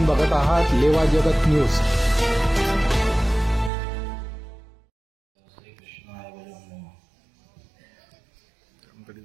बघत आहात लेवा जगत न्यूज.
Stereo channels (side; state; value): left; drops out; at 3.7 s